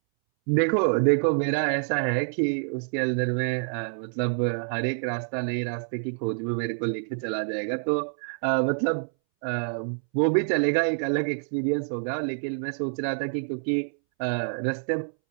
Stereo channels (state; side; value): silent; left; 60 dB below the other